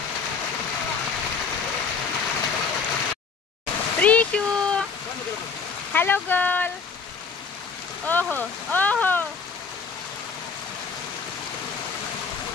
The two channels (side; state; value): right; quieter; 5.3 dB